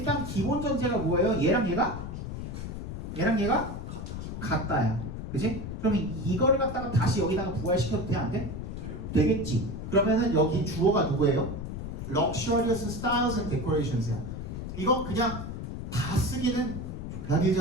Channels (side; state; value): left; noise; rumble, 7 dB below the sound